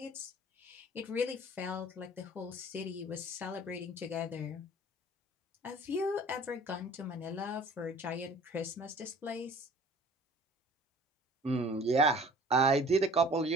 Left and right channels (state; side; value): normal; both; correlation 0.49